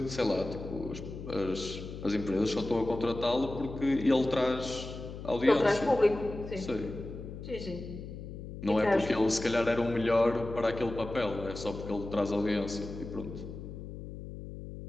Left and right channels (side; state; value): left; noise; hum, 10 dB below the sound